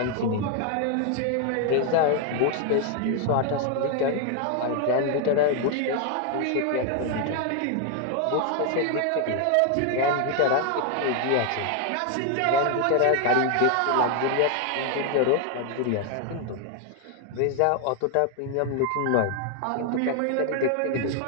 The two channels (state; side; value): different; both; correlation 0.00